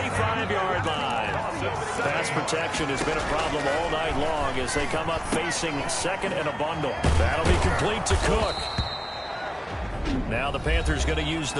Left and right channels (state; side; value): identical; both; correlation 1.00